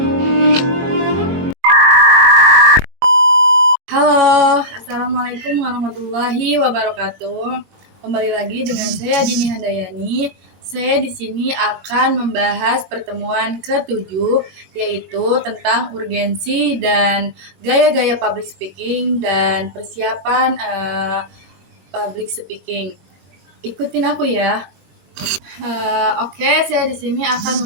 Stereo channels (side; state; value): left; late; 21 ms